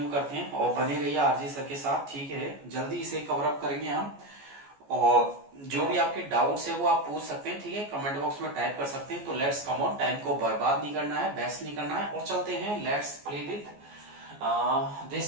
करते हैं और बने रहिए आरजी सर के साथ, ठीक है। जल्दी इसे कवर अप करेंगे हम। और जो भी आपके डाउट्स है वो आप पूछ सकते हैं, ठीक है, कमेंट बॉक्स में टाइप कर सकते हैं। तो लेट्स कम ऑन, टाइम को बर्बाद नहीं करना है, वेस्ट नहीं करना है, और चलते हैं। Let's play with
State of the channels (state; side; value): late; left; 14 ms